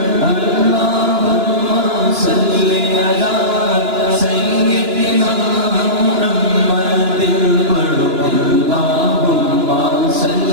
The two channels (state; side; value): late; left; 2.9 ms